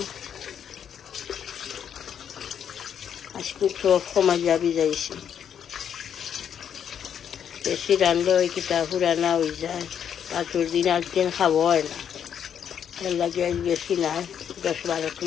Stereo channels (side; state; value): right; quieter; 8.6 dB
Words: আজকে সব কমাইয়া ভিজাইছি। বেশি রান্ধলে ওই কিতা পুরানা হয়ে যায়, পাঁচুর দিন একদিন খাবো হয় না। এর লাগে আজ বেশি নাই, 10-12